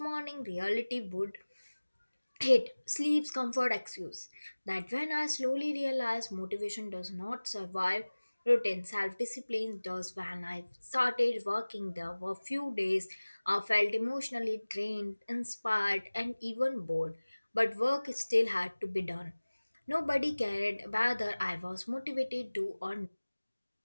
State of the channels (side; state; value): both; inverted; correlation -1.00